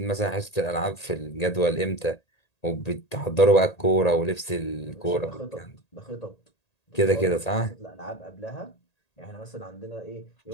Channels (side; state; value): right; late; 1.8 ms